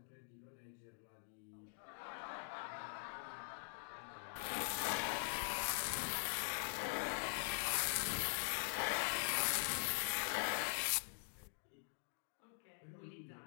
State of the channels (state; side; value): silent; right; digital silence